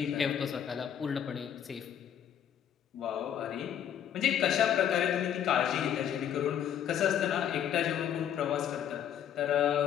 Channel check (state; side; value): quieter; right; 9.5 dB